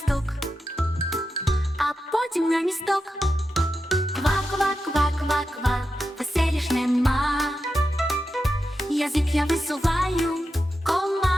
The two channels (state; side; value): normal; both; correlation 0.89